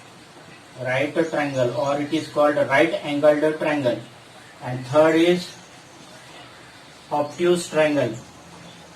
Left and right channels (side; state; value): both; identical; correlation 1.00